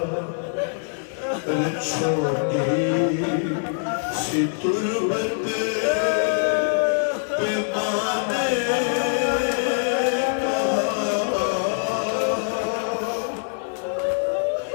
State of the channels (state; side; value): silent; right; digital silence